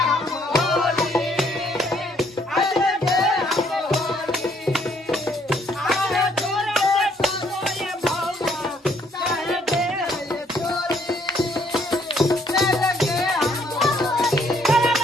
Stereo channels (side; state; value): both; normal; correlation 0.66